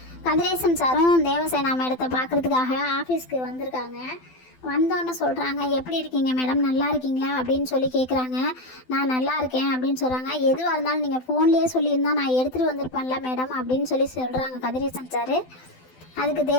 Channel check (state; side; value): late; right; 12 ms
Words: கதிரேசன் சாரும் தேவசேனா மேடத்தை பார்க்குறதுக்காக ஆஃபீஸ்க்கு வந்திருக்காங்க. வந்தோன்னு சொல்கிறாங்க, எப்படி இருக்கீங்க மேடம், நல்லா இருக்கீங்களா அப்படின்னு சொல்லி கேட்குறாங்க. நான் நல்லா இருக்கேன் அப்படின்னு சொல்கிறாங்க. எதுவாக இருந்தாலும் நீங்கள் ஃபோன்லேயே சொல்லியிருந்தா நான் எடுத்துகிட்டு வந்திருப்பேன்ல மேடம் அப்படின்னு சொல்கிறாங்க கதிரேசன் சார். அதுக்கு